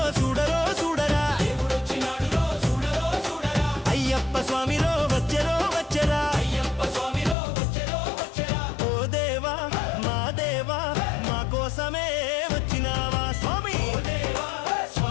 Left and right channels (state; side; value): drops out; right; at 7.4 s